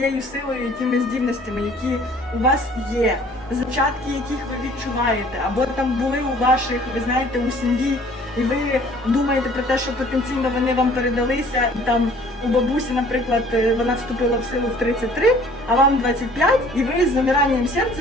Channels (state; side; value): normal; both; correlation 0.54